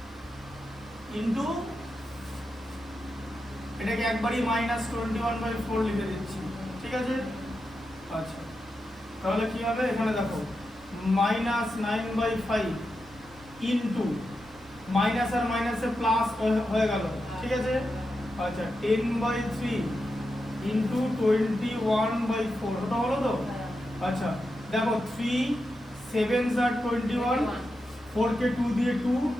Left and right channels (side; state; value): both; normal; correlation 0.88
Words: ইনটু এটাকে একবারই -21/4 লিখে দিচ্ছি। ঠিক আছে? আচ্ছা, তাহলে কি হবে? এখানে দেখো -9/5 ইনটু মাইনাস আর মাইনাসে প্লাস হয়ে গেল। ঠিক আছে? আচ্ছা, 10/3 ইনটু 21/4 ওটা হলো তো? আচ্ছা, দেখো 3 7s are 21, 4 কে 2 দিয়ে 2,